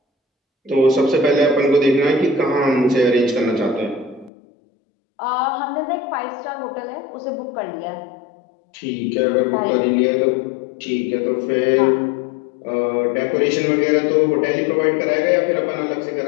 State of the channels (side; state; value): right; drops out; at 4.3 s